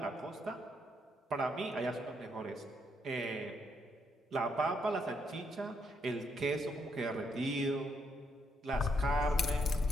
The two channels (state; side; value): normal; both; correlation 0.75